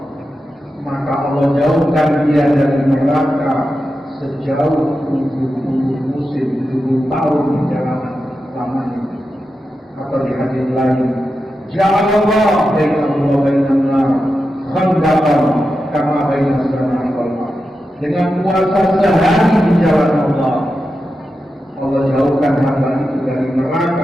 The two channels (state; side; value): normal; both; correlation 0.90